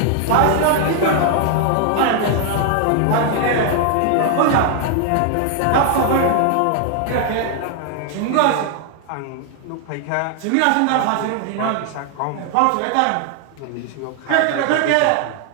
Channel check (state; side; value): different; both; correlation 0.00